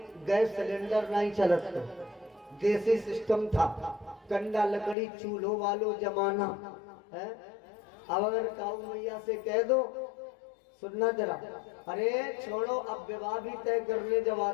गैस सिलेंडर नहीं चलत, देसी सिस्टम था, कंडा लकड़ी चूल्हो वालो जमाना है। अब अगर काऊ मैया से कह दो, सुनना जरा, अरे छोड़ो, अब विवाह भी तय करने जब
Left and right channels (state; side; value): drops out; right; at 5.0 s